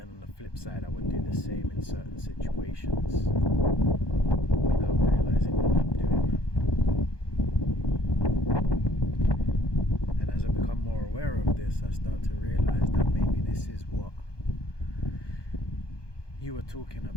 on the flip side, I would do the same in certain situations without realizing that I'm doing that. And as I become more aware of this, I start to realize that maybe this is what you were talking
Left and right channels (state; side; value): late; right; 1.2 ms